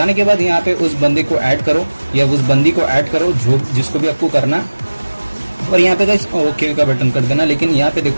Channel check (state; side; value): inverted; both; correlation -1.00